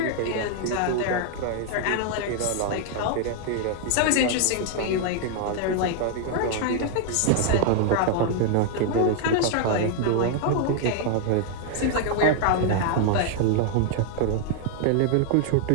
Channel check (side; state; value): both; different; correlation 0.00